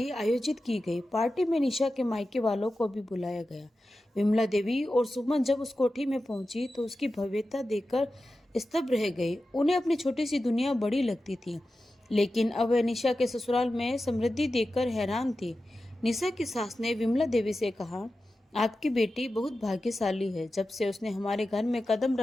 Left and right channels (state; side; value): normal; both; correlation 0.93